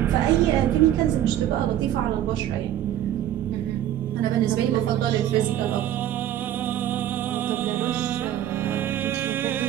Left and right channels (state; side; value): quieter; left; 11.8 dB